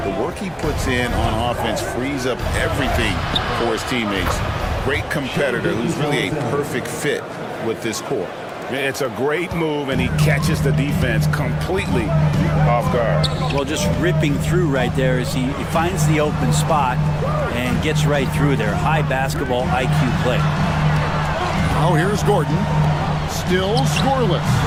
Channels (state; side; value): identical; both; correlation 1.00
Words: The work he puts in on offense frees up everything for his teammates. Great competitor who's really a perfect fit with this core. It's a great move, and he catches the defense completely off guard. Well, just ripping through right there as he finds the open spot and gets right through there. High basketball IQ play. Now here's Gordon. Still scoreless.